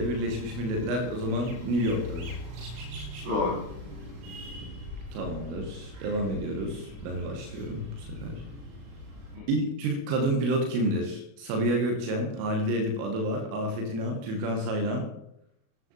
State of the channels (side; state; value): left; late; 37 ms